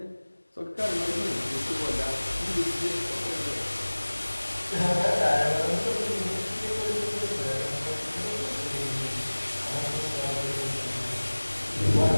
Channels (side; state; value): both; inverted; correlation -1.00